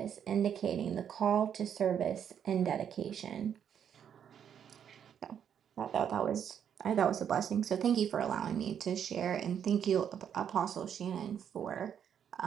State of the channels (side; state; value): left; quieter; 8.6 dB